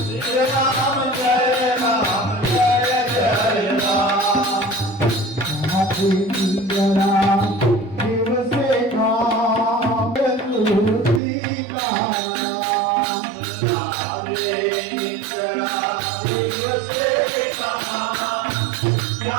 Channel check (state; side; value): drops out; left; at 11.2 s